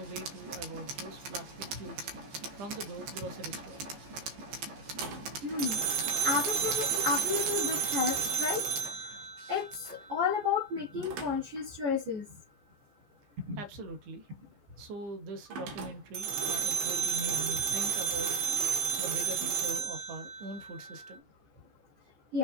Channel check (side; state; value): left; late; 14 ms